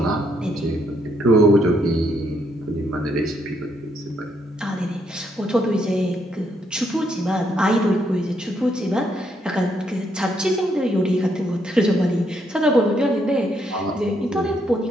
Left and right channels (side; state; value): both; normal; correlation 0.74